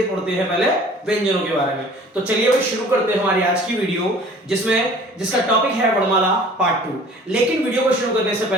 पढ़ते हैं पहले व्यंजनों के बारे में। तो चलिए भाई शुरू करते हैं हमारी आज की वीडियो, जिसका टॉपिक है वर्णमाला पार्ट 2। लेकिन वीडियो को शुरू करने से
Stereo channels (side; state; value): both; normal; correlation 0.49